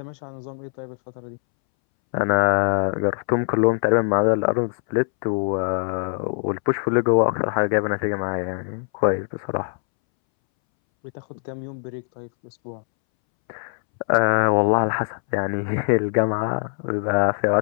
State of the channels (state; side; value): silent; right; 63 dB below the other